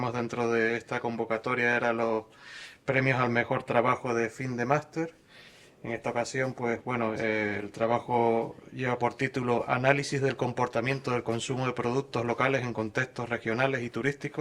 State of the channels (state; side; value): identical; both; correlation 1.00